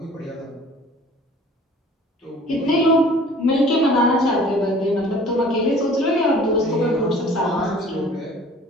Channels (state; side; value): normal; both; correlation 0.49